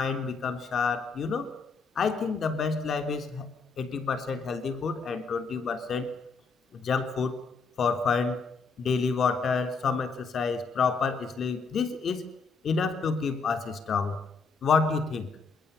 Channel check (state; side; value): quieter; right; 4.7 dB